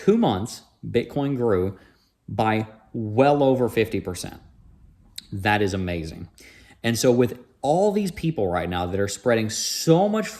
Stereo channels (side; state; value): both; identical; correlation 1.00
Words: months, Bitcoin grew by well over 50%. That is amazing. And so with all these people right now that are spreading so much